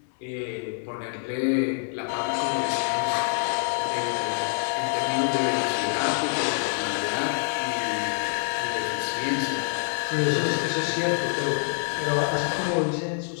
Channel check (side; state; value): right; silent; digital silence